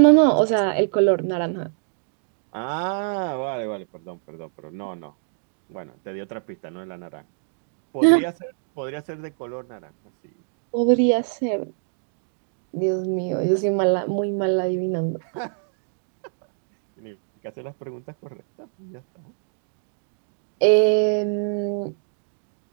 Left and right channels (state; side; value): silent; left; digital silence